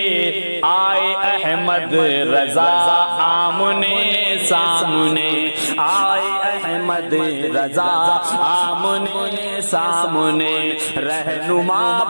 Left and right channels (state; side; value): inverted; both; correlation -1.00